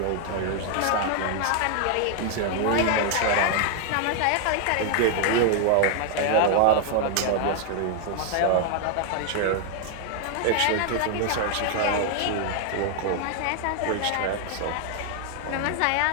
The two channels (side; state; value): both; different; correlation 0.00